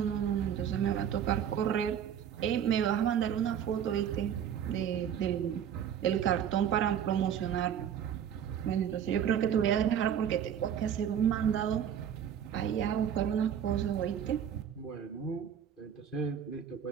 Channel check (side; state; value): left; quieter; 8.9 dB